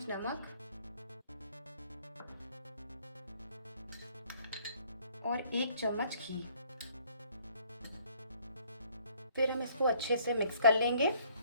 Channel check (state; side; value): inverted; both; correlation -0.61